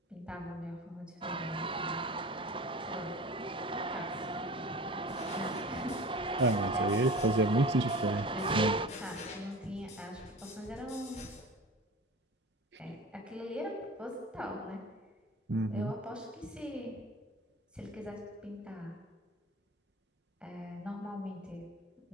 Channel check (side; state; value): both; normal; correlation 0.36